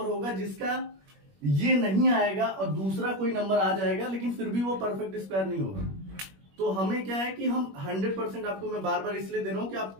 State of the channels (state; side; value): late; left; 21 ms